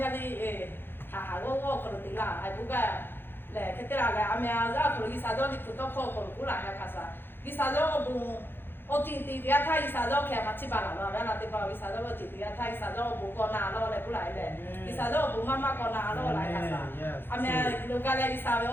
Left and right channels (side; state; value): right; late; 0.10 ms